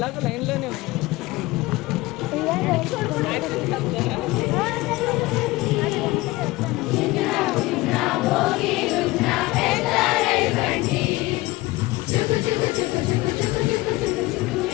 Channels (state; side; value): quieter; right; 20.2 dB